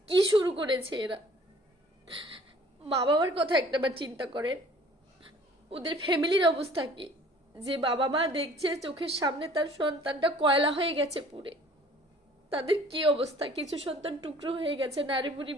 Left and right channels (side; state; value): both; normal; correlation 0.52